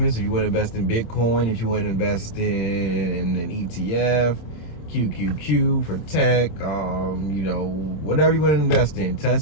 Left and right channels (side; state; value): right; late; 26 ms